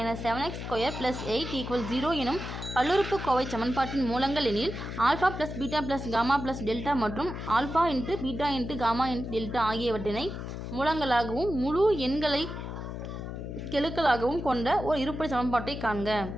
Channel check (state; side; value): noise; left; hum, 7 dB below the sound